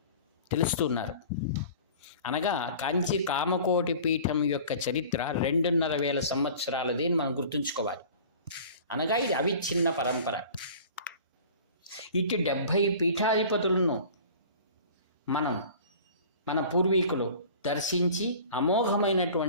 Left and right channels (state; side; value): inverted; both; correlation -0.43